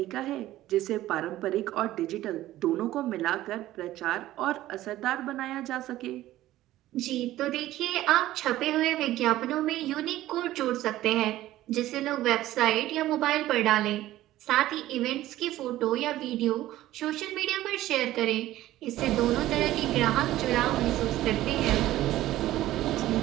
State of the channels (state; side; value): quieter; left; 15.0 dB